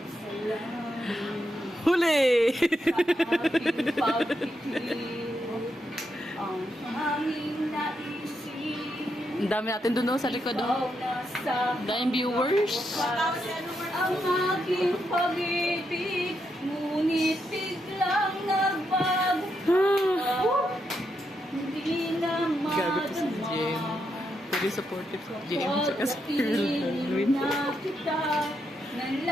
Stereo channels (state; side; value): normal; both; correlation 0.82